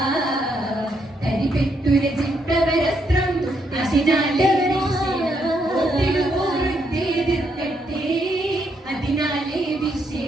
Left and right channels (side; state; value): both; normal; correlation 0.76